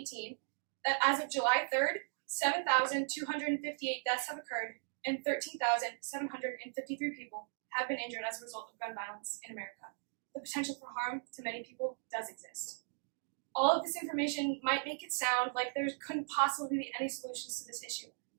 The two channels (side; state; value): left; silent; digital silence